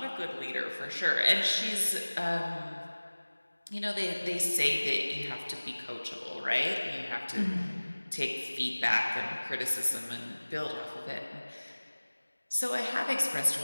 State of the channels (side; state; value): both; inverted; correlation -1.00